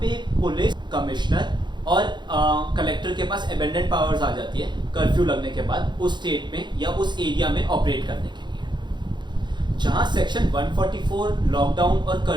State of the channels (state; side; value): late; left; 0.22 ms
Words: पुलिस कमिश्नर और कलेक्टर के पास अबेंडेंट पावर्स आ जाती है कर्फ्यू लगने के बाद उस स्टेट में या उस एरिया में ऑपरेट करने के लिए। जहाँ सेक्शन 144 लॉकडाउन और